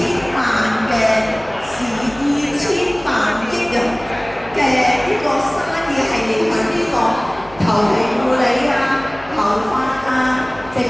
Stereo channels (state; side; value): noise; left; hum, 21 dB below the sound